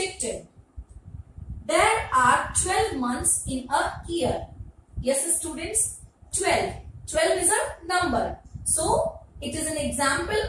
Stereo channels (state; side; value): identical; both; correlation 1.00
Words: There are 12 months in a year. Yes, students, 12. 12 is a number. So, it is an example